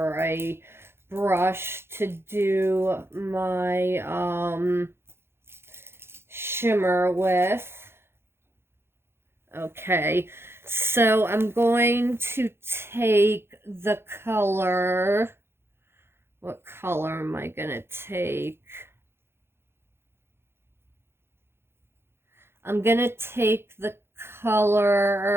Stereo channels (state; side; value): late; left; 0.12 ms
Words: a brush to do my shimmer with. Okay, so I'm going to take the color. What color am I gonna take? I'm gonna take the